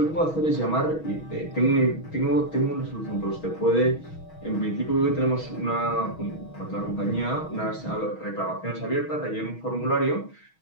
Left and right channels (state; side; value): late; right; 6.3 ms